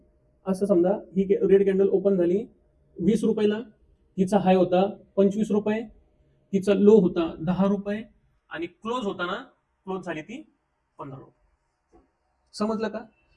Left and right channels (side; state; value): both; identical; correlation 1.00